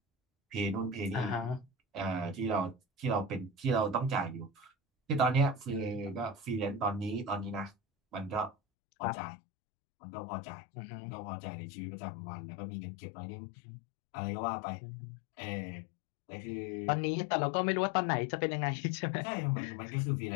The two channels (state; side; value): drops out; right; at 8.6 s